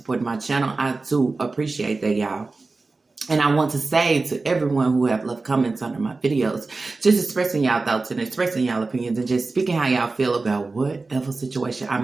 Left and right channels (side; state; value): left; quieter; 3.7 dB